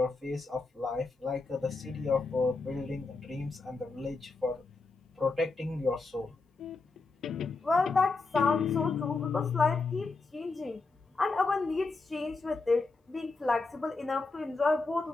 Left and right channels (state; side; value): quieter; right; 3.8 dB